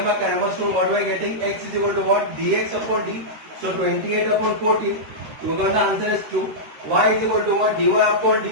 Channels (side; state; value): left; late; 13 ms